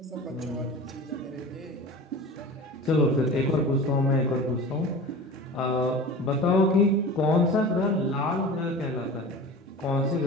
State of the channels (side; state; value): both; normal; correlation 0.35